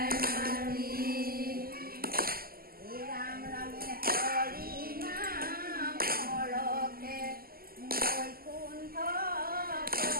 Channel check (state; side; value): late; left; 0.43 ms